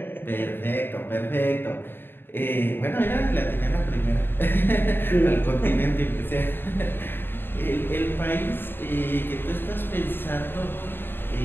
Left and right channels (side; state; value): right; late; 0.10 ms